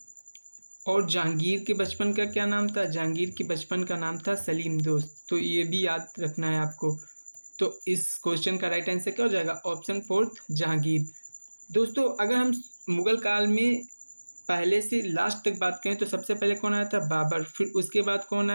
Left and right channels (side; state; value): both; inverted; correlation -1.00